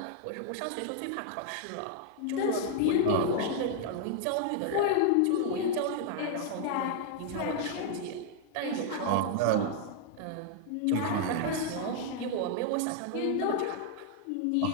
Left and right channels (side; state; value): both; different; correlation 0.00